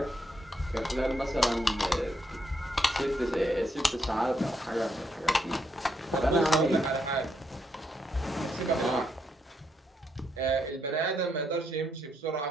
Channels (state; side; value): normal; both; correlation 0.77